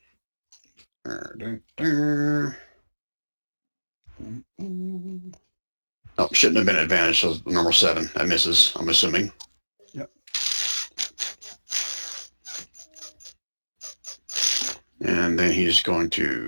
Oh, shouldn't have been advantage, so number 7. That misses, I'm assuming. Yep. And then he's going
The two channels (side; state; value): both; inverted; correlation -1.00